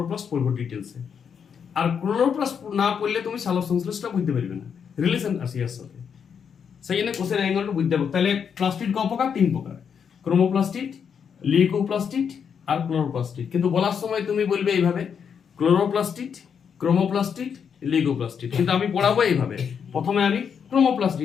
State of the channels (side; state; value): right; quieter; 7.1 dB